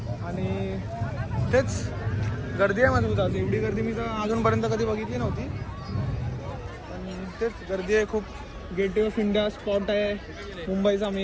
आणि तेच गर्दी आहे मजबूत. आज एवढी गर्दी मी तर अजूनपर्यंत कधी बघितली नव्हती. पण तेच गर्दी आहे खूप. गेटवे ऑफ इंडिया स्पॉट आहे मुंबईचा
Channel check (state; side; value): identical; both; correlation 1.00